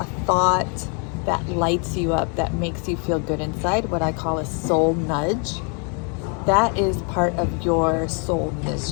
a thought that lights you up, that makes you feel good inside, what I call a soul nudge, that is part of your soul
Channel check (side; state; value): right; quieter; 37.8 dB